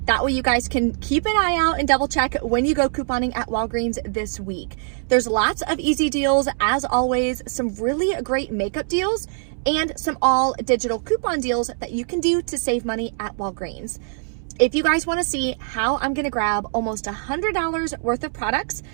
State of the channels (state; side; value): silent; left; 64 dB below the other